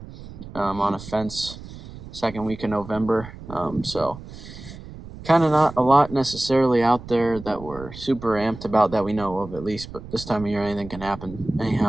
on a fence second week of November. So kind of not a lot necessarily out there that we're super amped about that we know of, at least, but this time of year anything can happen.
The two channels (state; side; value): noise; right; rumble, 14 dB below the sound